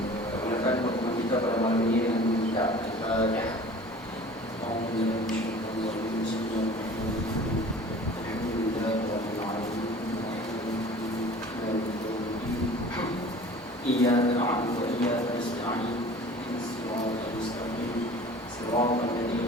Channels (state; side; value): normal; both; correlation 0.44